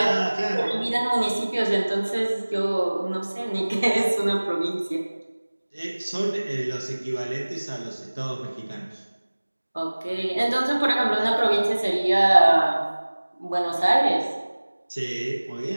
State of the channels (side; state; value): both; inverted; correlation -1.00